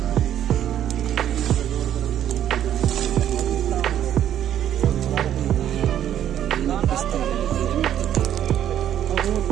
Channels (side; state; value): left; quieter; 10.7 dB